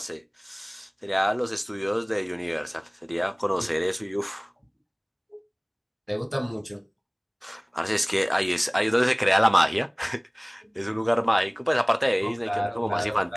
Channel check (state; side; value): identical; both; correlation 1.00